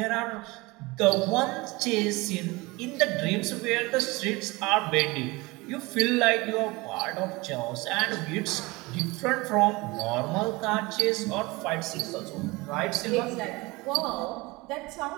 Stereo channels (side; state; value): left; quieter; 23.2 dB